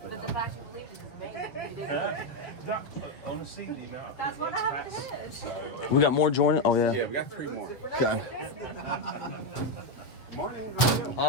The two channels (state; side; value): late; right; 7.5 ms